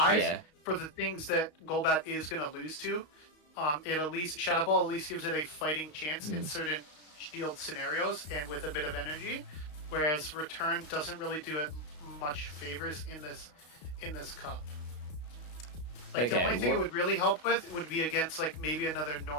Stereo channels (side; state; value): right; late; 33 ms